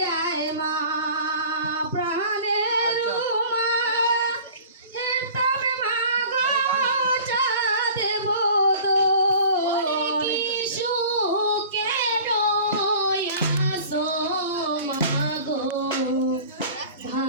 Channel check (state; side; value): inverted; both; correlation -0.43